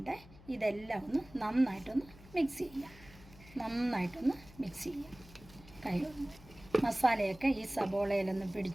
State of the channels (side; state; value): left; noise; hum, 21 dB below the sound